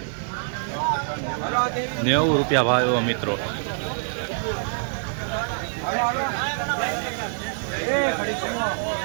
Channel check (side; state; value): left; silent; digital silence